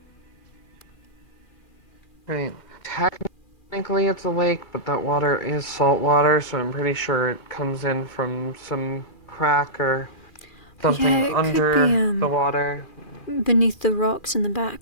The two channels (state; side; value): late; right; 2.4 ms